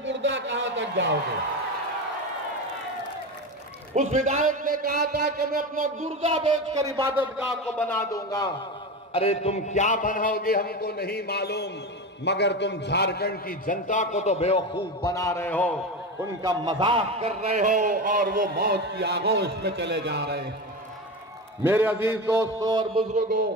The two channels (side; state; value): both; normal; correlation 0.22